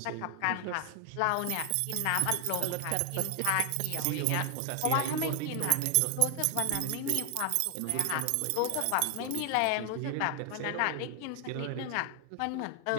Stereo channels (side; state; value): both; different; correlation 0.00